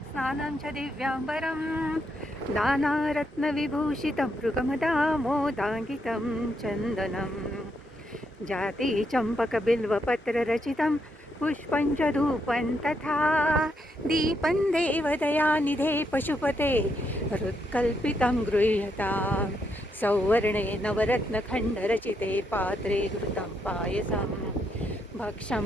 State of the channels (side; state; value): both; normal; correlation 0.78